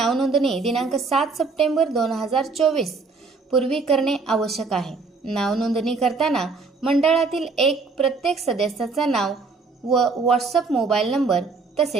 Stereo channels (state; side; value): quieter; left; 4.3 dB